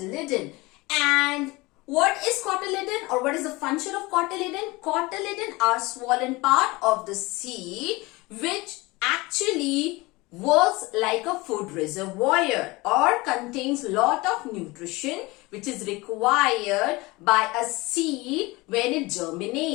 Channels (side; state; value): right; quieter; 22.6 dB